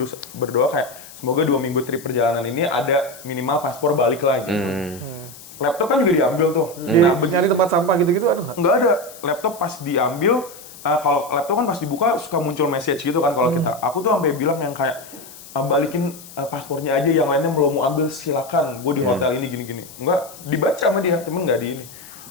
berdoa kayak semoga 2 minggu trip perjalanan ini ada minimal paspor balik lah gitu. Laptop kan juga diambil tuh. Nah, Nyari tempat sampah gitu-gitu ada nggak? nggak ada. Laptop pas diambil, kalau laptop kan pas dibuka suka muncul message gitu kan kalau kita. Aku tuh sampai bilang yang kayak balikin paspornya aja, yang lainnya mau ambil silakan. Gue di hotel ini gini-gini. Enggak dibaca sama dia, cuman nggak di ini.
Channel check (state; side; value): noise; left; hiss, 18 dB below the sound